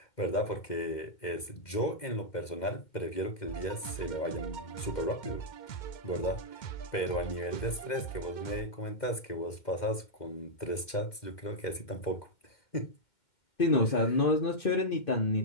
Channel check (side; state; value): right; late; 2.0 ms